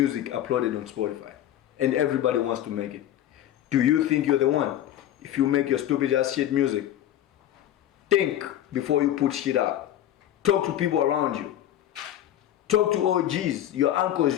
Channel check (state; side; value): quieter; right; 11.8 dB